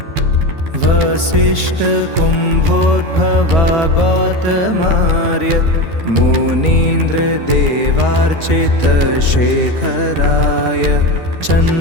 वसिष्ठ कुम्भोद्भवा गौतमार्य मुनीन्द्र देवार्चित शेखराय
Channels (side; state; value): left; late; 12 ms